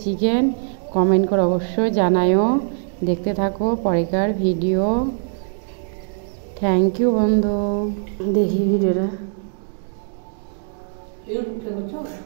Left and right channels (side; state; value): left; silent; digital silence